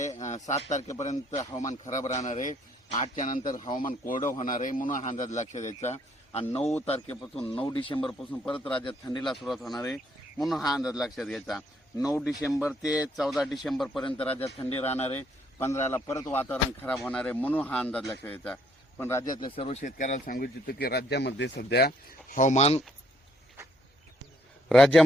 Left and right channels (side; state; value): both; normal; correlation 0.68